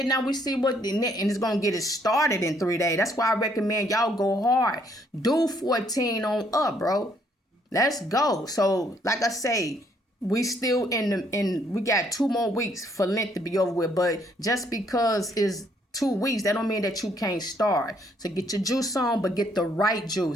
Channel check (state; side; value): normal; both; correlation 0.68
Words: now we see what, and it's going to get it started in 3 days. That's why I recommend y'all go hard. Do 14 on up, bro. Let's go. So, like I say, we still we got 2 more weeks for Lent to be over with. But just because it's 2 weeks, that don't mean that you can't start. So get your juice on, but get the right